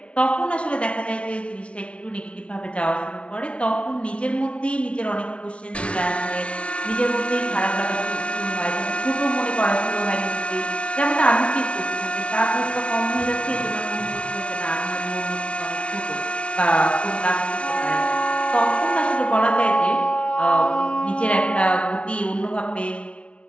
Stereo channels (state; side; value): late; right; 0.061 ms